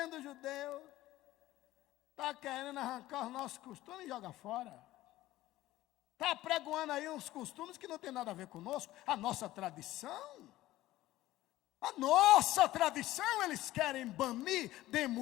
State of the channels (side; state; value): right; quieter; 16.1 dB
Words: judeus, está querendo arrancar os nossos costumes e jogar fora. Está pregoando aí uns costumes que não tem nada a ver conosco. A nossa tradição. A nossa tradição eles querem banir,